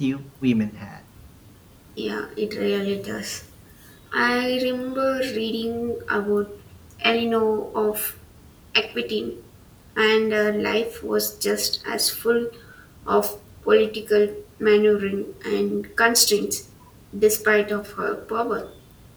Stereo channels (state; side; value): identical; both; correlation 1.00